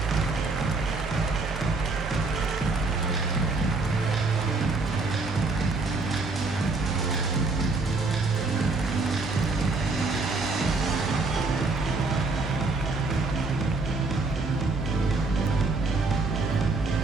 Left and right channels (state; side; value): quieter; left; 3.6 dB